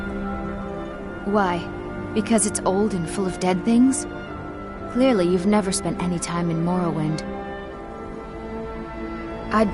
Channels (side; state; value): both; identical; correlation 1.00